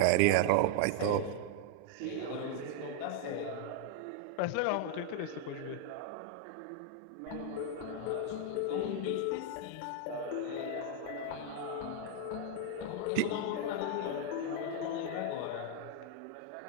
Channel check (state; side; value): different; both; correlation 0.01